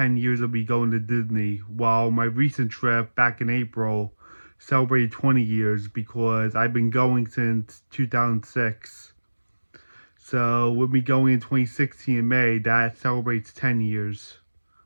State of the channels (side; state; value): both; inverted; correlation -1.00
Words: years of me going to Disney, while my recent trip back in April celebrated 20 years because I've been going since 2006. So with me going in 2016 in May, that celebrates 10 years